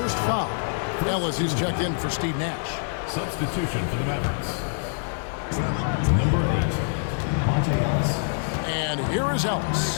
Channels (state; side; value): silent; right; digital silence